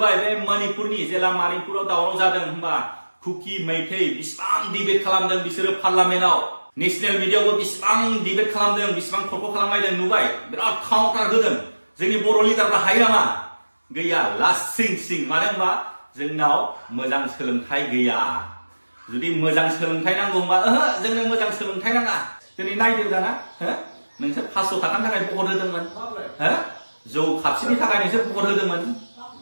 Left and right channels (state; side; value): inverted; both; correlation -1.00